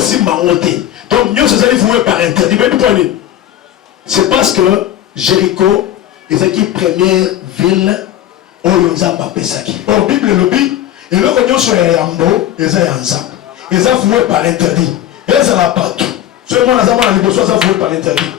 C'est parce que Jéricho est la première ville où ils ont pesaki. Au Bible le dit, et le cognon sur Yambo, ils ont ensemble. Ils ont voué par interdit. Ils ont la partout. Seulement les amants les besoins ont voué par interdit.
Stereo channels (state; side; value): quieter; right; 11.9 dB